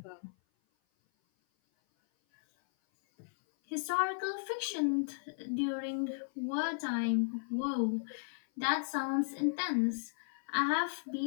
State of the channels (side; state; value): right; silent; 54 dB below the other